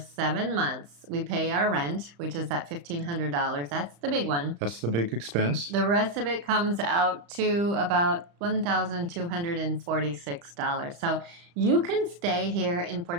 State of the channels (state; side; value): late; left; 35 ms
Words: months, we pay our rent, which is that $1,500. That's the big one. That's the big expense. The rest of it comes out to about $1,246. So you can stay here in